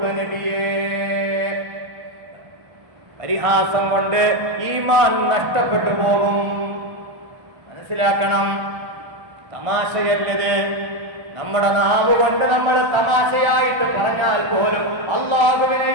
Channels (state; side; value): late; left; 1.5 ms